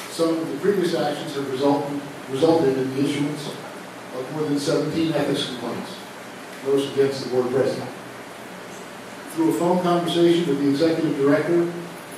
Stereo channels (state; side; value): identical; both; correlation 1.00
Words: Some of the previous actions have resulted in the issuance of more than 17 ethics complaints, most against the board president. Through a phone conversation with the executive director